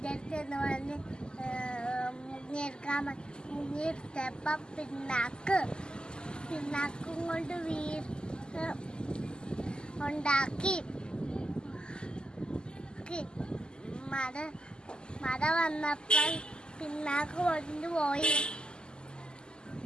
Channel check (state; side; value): late; right; 0.047 ms